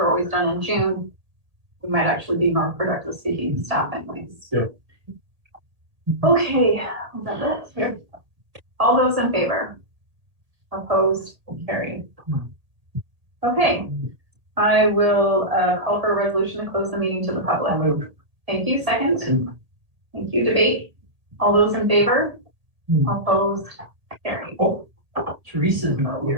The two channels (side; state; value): left; late; 1.8 ms